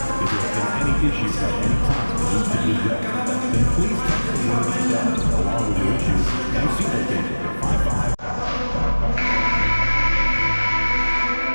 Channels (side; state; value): both; inverted; correlation -1.00